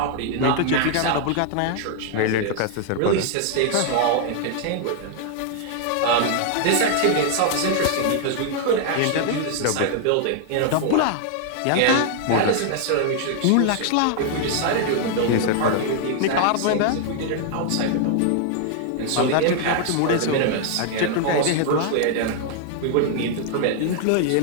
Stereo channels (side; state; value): both; different; correlation 0.00